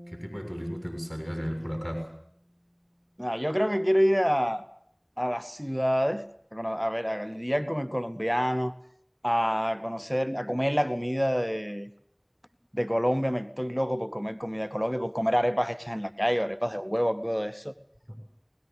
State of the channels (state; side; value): identical; both; correlation 1.00